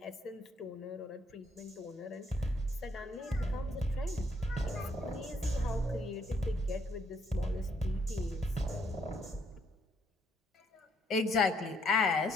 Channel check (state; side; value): normal; both; correlation 0.70